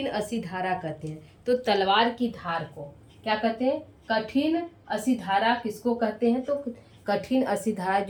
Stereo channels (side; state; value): both; identical; correlation 1.00